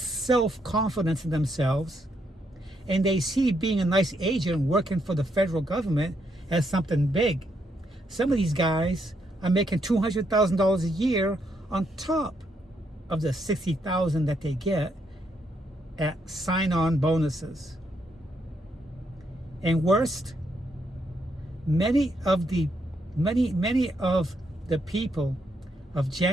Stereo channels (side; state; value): both; normal; correlation 0.76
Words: in themselves. And they see being a nice agent working for the federal government as something big. Some of these guys are making $200,000 a year on top of the $60,000 that they get at sign-on bonuses. And worst, many of the people of